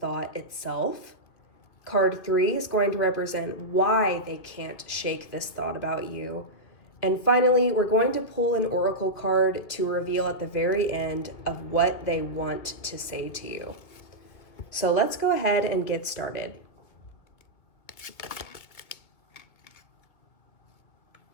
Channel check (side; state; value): right; late; 2.1 ms